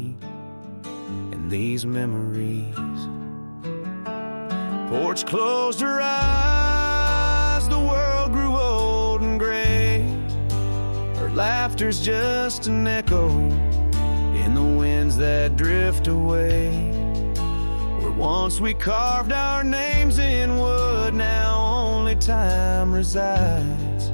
and these memories. Porch closed her eyes, the world grew old and gray. Her laughter's just an echo in the winds that drift away. Where once we carved our names in wood, now only time resides.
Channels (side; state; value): both; inverted; correlation -1.00